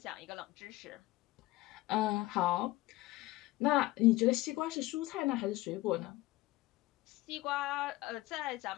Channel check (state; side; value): quieter; right; 18.6 dB